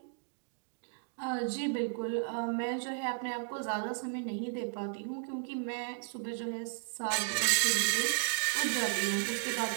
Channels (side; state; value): left; silent; digital silence